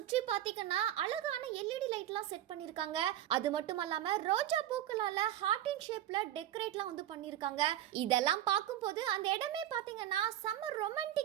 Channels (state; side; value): quieter; left; 12.2 dB